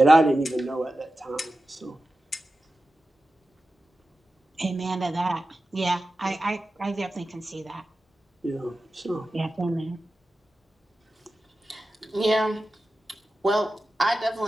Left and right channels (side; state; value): both; normal; correlation 0.93